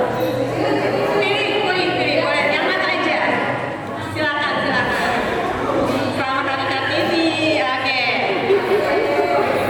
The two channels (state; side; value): identical; both; correlation 1.00